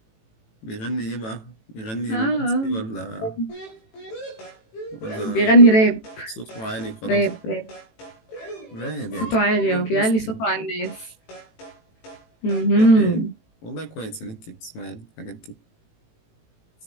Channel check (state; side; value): late; right; 18 ms